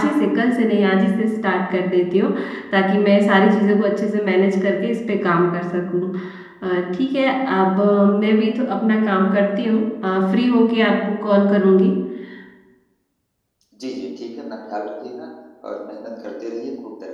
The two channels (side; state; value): both; identical; correlation 1.00